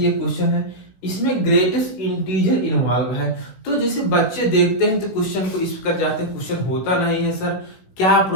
क्वेश्चन है, इसमें ग्रेटेस्ट इंटीजर इन्वॉल्व है। तो जैसे बच्चे देखते हैं तो क्वेश्चन को इस कर जाते हैं, क्वेश्चन होता नहीं है सर, क्या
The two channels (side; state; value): right; late; 16 ms